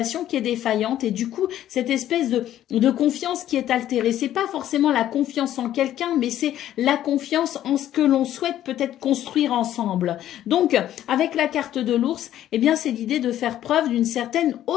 qui est défaillante. Et du coup, cette espèce de confiance qui est altérée. C'est pas forcément la confiance en quelqu'un, mais c'est la confiance en ce que l'on souhaite peut-être construire ensemble. Donc, avec la carte de l'ours, eh bien, c'est l'idée de faire preuve d'une certaine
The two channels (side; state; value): right; quieter; 12.1 dB